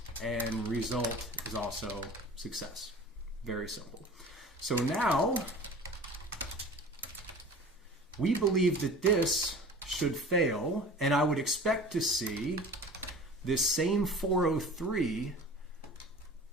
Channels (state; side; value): normal; both; correlation 0.40